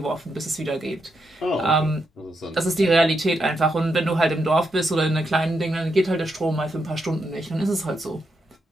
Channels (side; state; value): both; normal; correlation 0.82